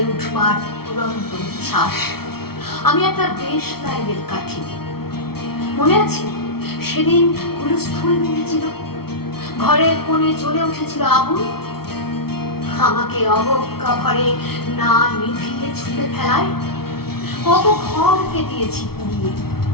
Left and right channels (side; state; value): right; late; 0.95 ms